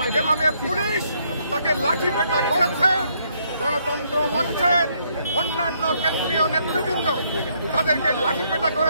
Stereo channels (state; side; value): inverted; both; correlation -0.71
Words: যেভাবে পুলিশ তাকে লাঠিপেটা করেছে, গণতন্ত্র মঞ্চের অন্যান্য কেন্দ্রীয় নেতৃবৃন্দ তাদেরকে লাঠিপেটা